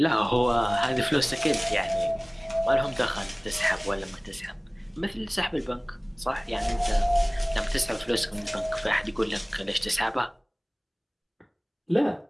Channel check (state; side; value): identical; both; correlation 1.00